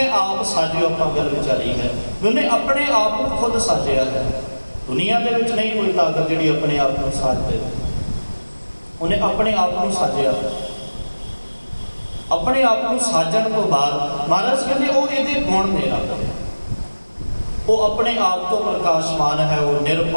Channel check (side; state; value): both; inverted; correlation -1.00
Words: ਆਪ ਸਾਜਿਓ। ਆਪਾਂ ਗੱਲ ਵਿਚਾਰੀ ਹੈ ਵੀ ਉਹਨੇ ਆਪਣੇ ਆਪ ਨੂੰ ਖੁਦ ਸਾਜਿਆ ਹੈ। ਦੁਨੀਆ ਦੇ ਵਿੱਚ ਨਹੀਂ ਕੋਈ ਤਾਕਤ ਜਿਹੜੀ ਆਪਣੇ ਆਪ ਨੂੰ ਸਾਜ ਦੇ। ਉਹਨੇ ਆਪਣੇ ਆਪ ਨੂੰ ਸਾਜਿਆ। ਆਪਣੇ ਆਪ ਨੂੰ ਸਾਜਣ ਤੋਂ ਬਾਅਦ ਮਹਾਰਾਜ ਕਹਿੰਦੇ ਉਹ ਇਹਦੇ ਗੁਣ ਨੇ ਰੱਬ ਦੇ। ਉਹ ਆਪਣੇ ਆਪ ਤੋਂ ਪ੍ਰਕਾਸ਼ਮਾਨ ਹੈ, ਉਹ